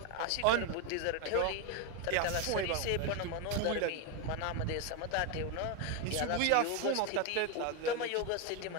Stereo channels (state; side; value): different; both; correlation 0.01